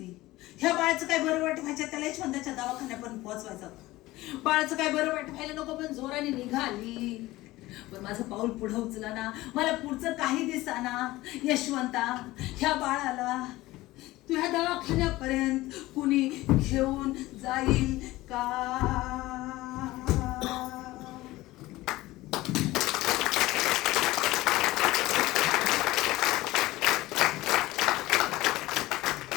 ह्या बाळाचं काय बरं वाईट व्हायचं, त्याला यशवंताच्या दवाखान्यापर्यंत पोहोचवायचं होतं. बाळाचं काय बरं वाईट व्हायला नको पण जोराने निघाली. पण माझं पाऊल पुढे उचला ना, मला पुढचं काही दिसाना. यशवंता, ह्या बाळाला तुझ्या दवाखान्यापर्यंत कुणी घेऊन जाईल का.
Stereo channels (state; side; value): quieter; right; 18.2 dB